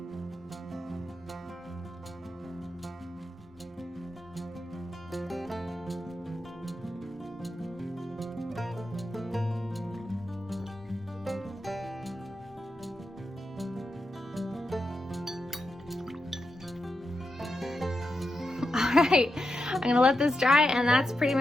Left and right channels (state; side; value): normal; both; correlation 0.87